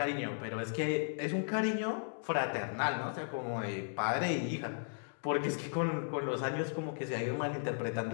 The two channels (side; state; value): right; silent; digital silence